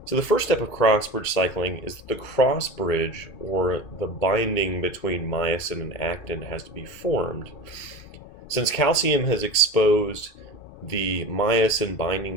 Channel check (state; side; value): late; right; 2.2 ms